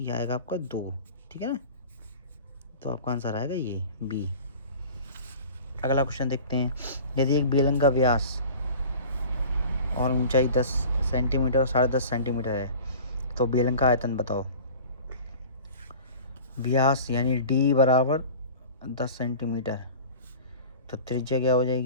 आएगा आपका 2, ठीक है ना। तो आपका आंसर आएगा ये बी। अगला क्वेश्चन देखते हैं। यदि एक बेलन का व्यास और ऊंचाई 10 सेंटीमीटर और 10.5 सेंटीमीटर है तो बेलन का आयतन बताओ। व्यास यानी डी बराबर 10 सेंटीमीटर, तो त्रिज्या क्या हो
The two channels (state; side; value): inverted; both; correlation -0.40